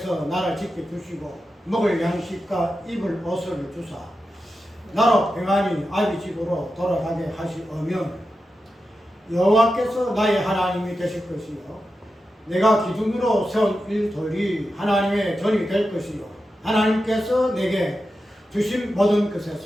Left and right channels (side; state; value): both; normal; correlation 0.90